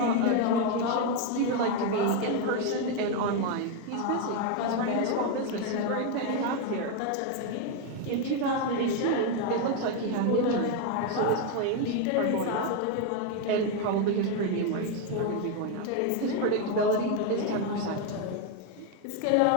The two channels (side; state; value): both; different; correlation 0.01